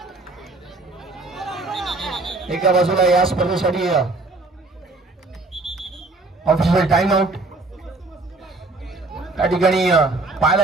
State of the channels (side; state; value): left; quieter; 3.2 dB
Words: एका बाजूला या स्पर्धेसाठी ऑफिशियल टाइम आउट त्या ठिकाणी